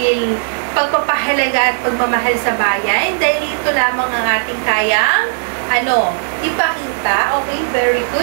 pagpapahalaga at pagmamahal sa bayan, dahil ito lamang ang ating kayang, ipakita. Okay, very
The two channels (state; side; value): silent; left; digital silence